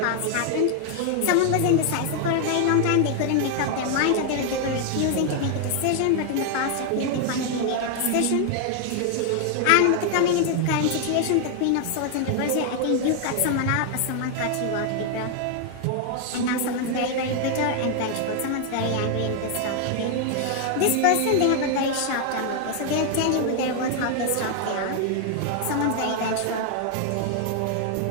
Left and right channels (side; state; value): both; different; correlation 0.00